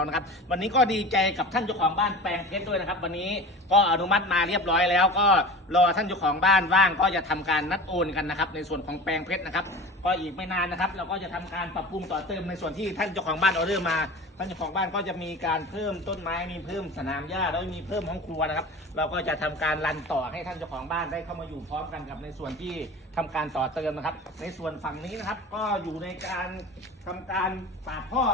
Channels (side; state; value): both; normal; correlation 0.35